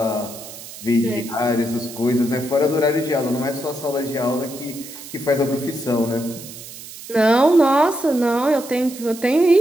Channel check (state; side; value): noise; right; hiss, 14 dB below the sound